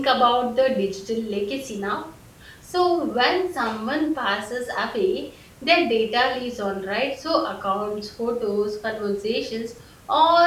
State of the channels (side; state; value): both; identical; correlation 1.00